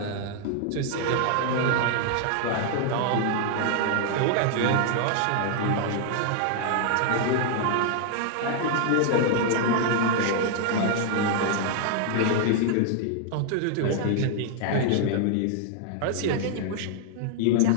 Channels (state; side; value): different; both; correlation 0.00